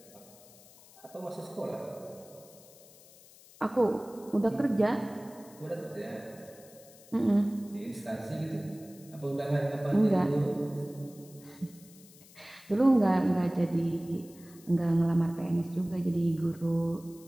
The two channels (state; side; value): noise; left; hiss, 23 dB below the sound